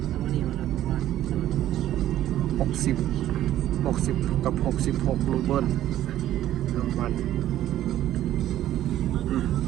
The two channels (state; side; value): quieter; left; 12.8 dB